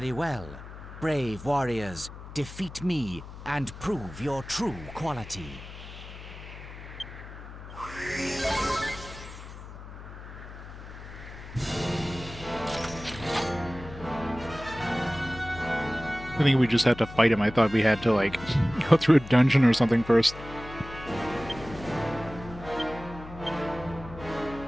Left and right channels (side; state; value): left; noise; hum, 14 dB below the sound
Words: well. Brave warriors, defeat me and prove your true quality. I think we just had to fight him. I thought we had to, like, go through a dungeon or something first.